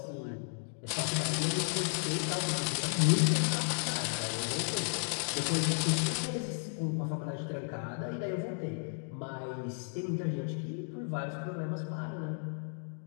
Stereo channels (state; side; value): silent; right; 55 dB below the other